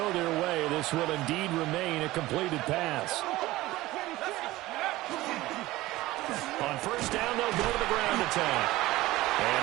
their way. This will indeed remain a completed pass. On first down, they'll go to the ground attack. And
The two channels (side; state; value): left; quieter; 17.9 dB